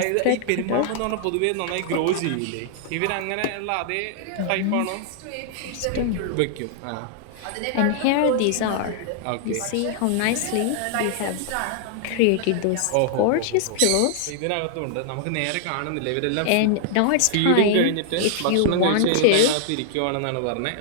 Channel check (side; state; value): both; different; correlation -0.01